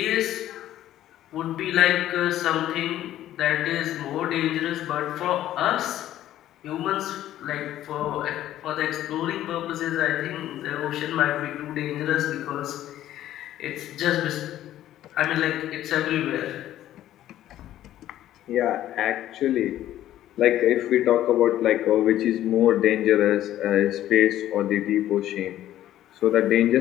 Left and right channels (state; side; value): quieter; right; 12.9 dB